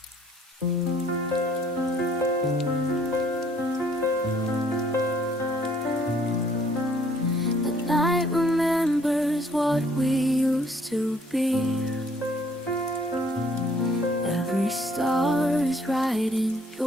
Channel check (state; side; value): normal; both; correlation 0.62